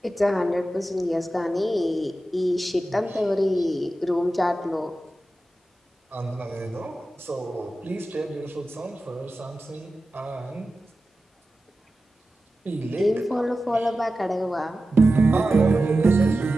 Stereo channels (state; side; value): normal; both; correlation 0.93